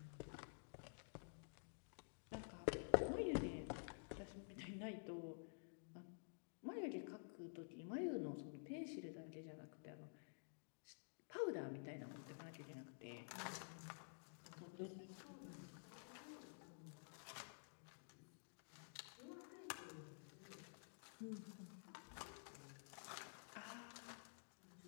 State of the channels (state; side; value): silent; right; digital silence